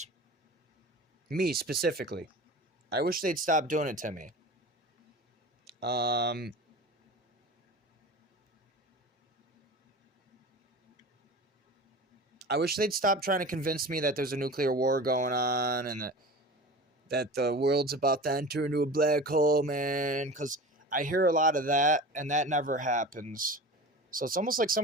Me, specifically. I wish they'd stop doing it to me. I wish they'd stop trying to convince me that there's a nuclear war going on and that the world's about to enter into a black hole, man. Because I hear a lot of that, and that never happens. So it's almost like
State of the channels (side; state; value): both; normal; correlation 0.34